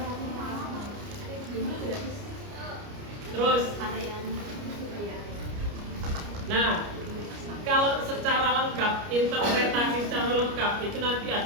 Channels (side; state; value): left; late; 29 ms